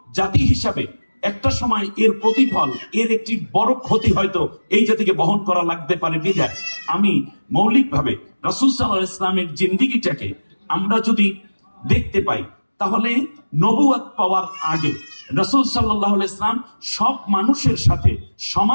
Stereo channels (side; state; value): both; inverted; correlation -1.00